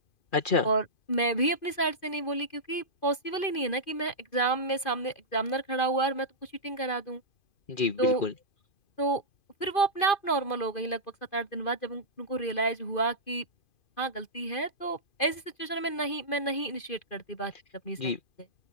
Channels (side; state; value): right; late; 2.5 ms